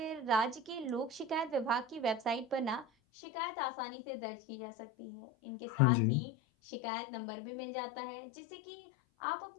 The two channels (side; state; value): right; drops out; at 2.9 s